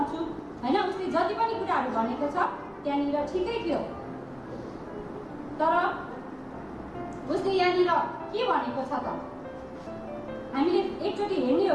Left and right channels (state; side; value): identical; both; correlation 1.00